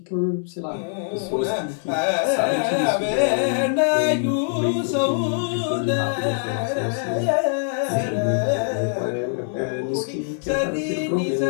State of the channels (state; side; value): silent; right; 63 dB below the other